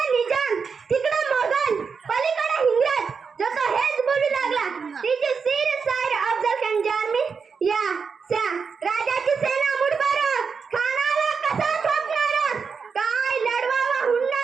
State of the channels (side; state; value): left; quieter; 5.6 dB